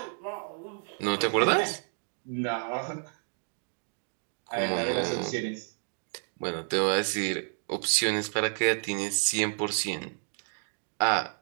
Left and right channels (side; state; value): left; silent; 57 dB below the other